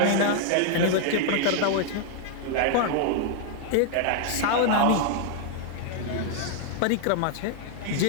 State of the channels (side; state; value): both; different; correlation 0.00